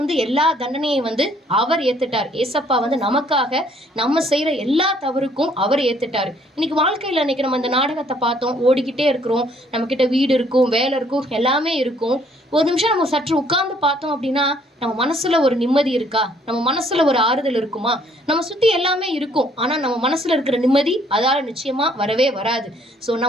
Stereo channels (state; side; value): normal; both; correlation 0.63